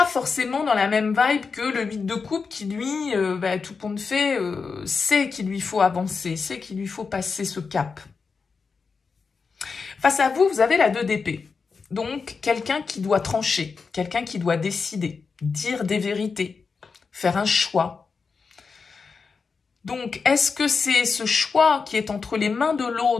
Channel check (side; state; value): right; quieter; 5.0 dB